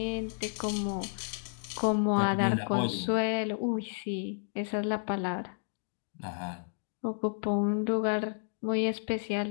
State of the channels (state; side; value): silent; right; digital silence